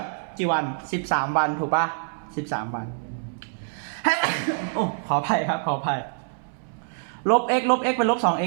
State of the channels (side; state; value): left; silent; 61 dB below the other